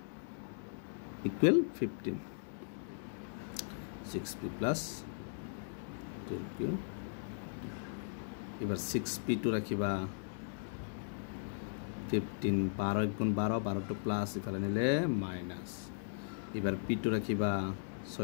equal 15 6p plus 12q এবার 6p2 রাখিবা 15 12 গুণ 12 12 টো প্লাস ইফালে নিলে মাইনাস এবার p2 রাখিবা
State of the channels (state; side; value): silent; right; digital silence